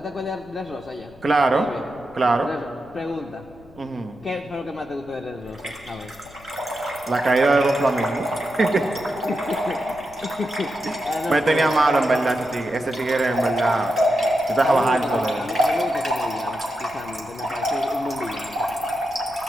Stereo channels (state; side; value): noise; left; rumble, 24 dB below the sound